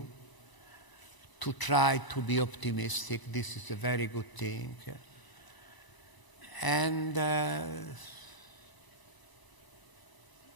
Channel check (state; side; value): late; right; 1.0 ms